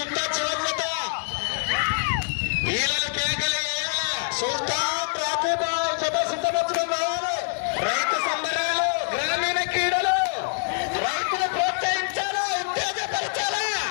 చివరిత వీళ్ళ కేకలు సుల్తాన్ రాకీ బాయ్ జత సిద్ధపరచడం కావాలి. రైతు సంబరాలు, గ్రామీణ క్రీడలు, రైతులు ప్రోత్సహించాలా, ఉత్తేజపరచాలా.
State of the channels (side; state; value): right; silent; 60 dB below the other